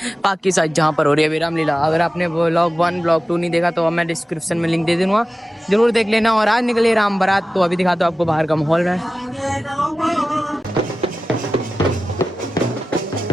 पाक की साइड जहाँ पर हो रही है रामलीला। अगर आपने ब्लॉग 1 ब्लॉग 2 नहीं देखा तो मैं डिस्क्रिप्शन में लिंक दे दूंगा, जरूर देख लेना। और आज निकले राम बारात, तो अभी दिखाता हूँ आपको बाहर का माहौल में।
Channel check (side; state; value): both; normal; correlation 0.95